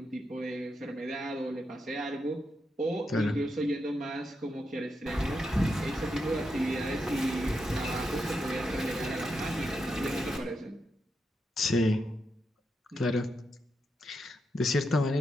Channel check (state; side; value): normal; both; correlation 0.84